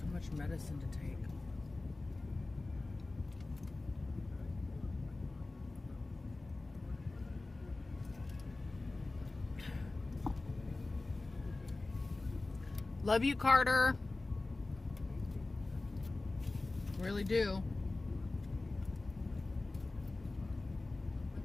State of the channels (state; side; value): quieter; right; 3.2 dB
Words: much medicine to take. Love you, Carter. Really do.